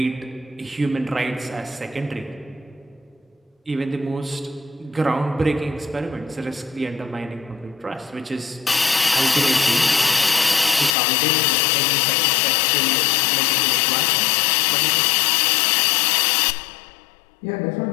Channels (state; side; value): drops out; right; at 11.0 s